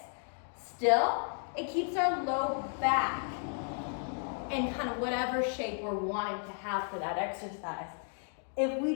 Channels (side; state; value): right; silent; 55 dB below the other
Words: still. It keeps our low back in kind of whatever shape we're wanting to have for that exercise. If we